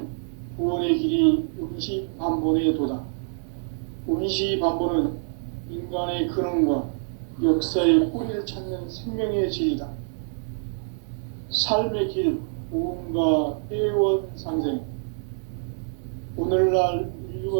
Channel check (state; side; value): silent; left; digital silence